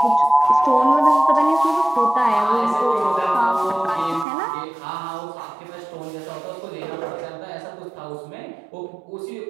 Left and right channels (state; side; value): drops out; left; at 4.2 s